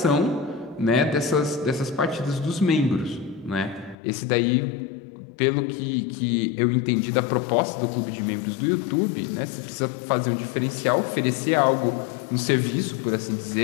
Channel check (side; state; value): right; drops out; at 4.0 s